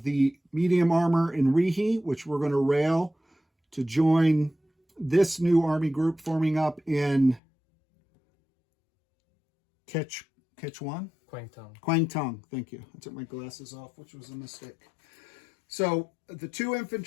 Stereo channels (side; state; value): right; drops out; at 7.4 s